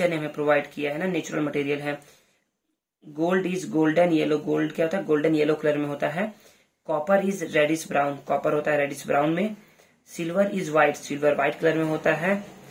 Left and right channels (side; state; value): both; identical; correlation 1.00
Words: ने हमें प्रोवाइड किया है ना, नेचुरल मटेरियल है। Gold is golden yellow, gold क्या होता है, गोल्डन येलो कलर में होता है। Copper is reddish brown, copper होता है रेडिश ब्राउन में। Silver is white, silver white colour में होता है।